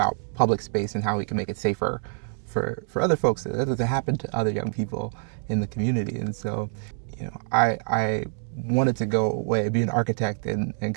public space and how we can make it safer for other folks that doesn't happen to other young people in the community. And so, I wanted to go away, be an architect, and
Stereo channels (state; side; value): silent; left; digital silence